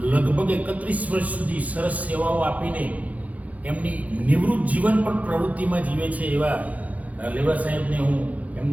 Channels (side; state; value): left; late; 0.072 ms